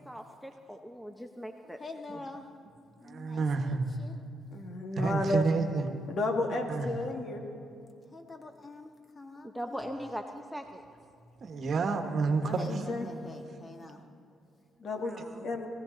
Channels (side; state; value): both; normal; correlation 0.81